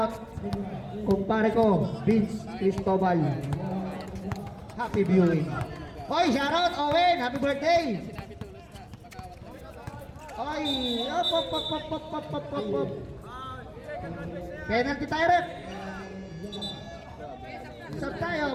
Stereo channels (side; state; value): both; identical; correlation 1.00